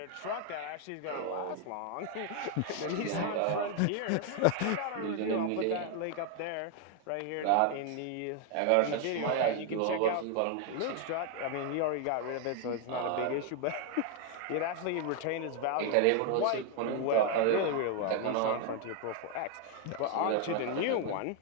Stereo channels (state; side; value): different; both; correlation 0.01